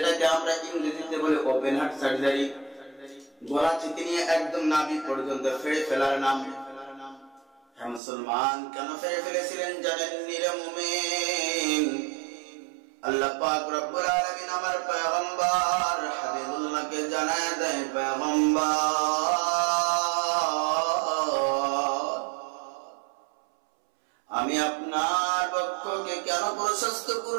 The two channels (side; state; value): left; drops out; at 8.0 s